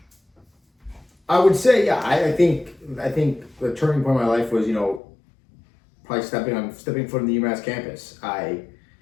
I would say, yeah, I think the turning point in my life was, you know, probably stepping foot in the UMass campus. I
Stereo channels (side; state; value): right; drops out; at 5.0 s